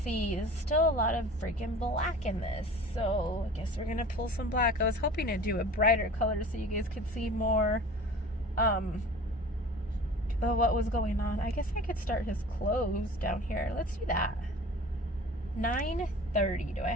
There's still a lot of freaking black in this. So I guess we're going to pull some black. I was hoping to do a brighter color so you guys could see more of what was going on. I guess I could start his clothes down here. Let's do that. 9:30. Do I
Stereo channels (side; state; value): both; normal; correlation 0.42